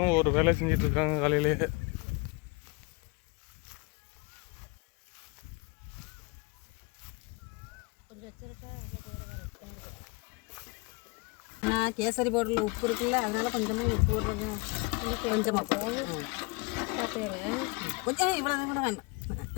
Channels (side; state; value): right; quieter; 27.4 dB